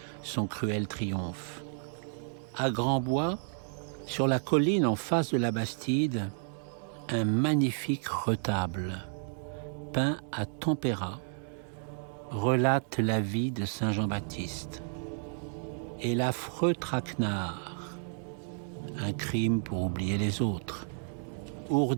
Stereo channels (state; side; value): silent; left; 57 dB below the other